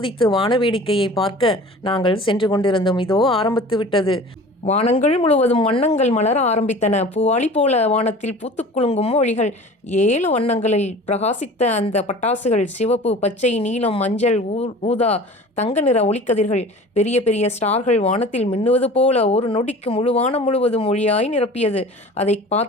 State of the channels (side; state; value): both; normal; correlation 0.41